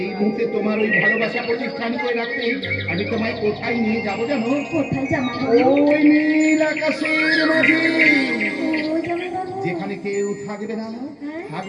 এই মুহূর্তে তোমার ওই ভালোবাসা প্রতিষ্ঠান করে রাখতে আমি তোমায় কোথায় নিয়ে যাবো জানো? কোথায় জামাইবাবু? ওই নীল আকাশের মাঝে, ও জামাইবাবু, যেখানে কেউ থাকবে না, হ্যাঁ?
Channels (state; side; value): identical; both; correlation 1.00